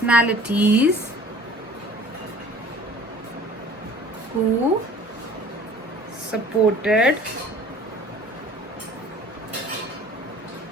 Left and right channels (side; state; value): both; normal; correlation 0.48